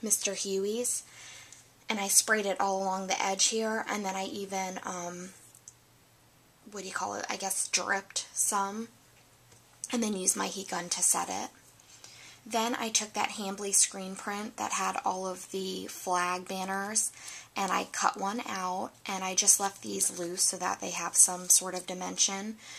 Mr. Huey's and I sprayed it all along the edge here, and then I even, I guess dripped some, and then used my heat gun to set it. Then I took that Hambly screen print that had all of the flag banners, and I cut one out, and I just left these loose so that they have some sort of dimension,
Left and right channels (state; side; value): identical; both; correlation 1.00